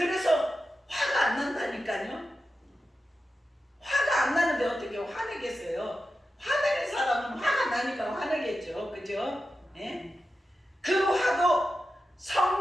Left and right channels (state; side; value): normal; both; correlation 0.91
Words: 화가 안 난다니까요. 화가 안 나는데 어떻게 화내겠어요? 화내는 사람은 화가 나니까 화내겠죠. 그죠? 예? 그 화도